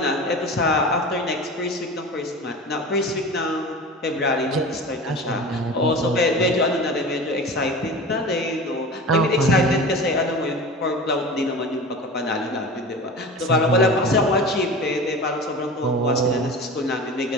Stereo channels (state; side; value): normal; both; correlation 0.34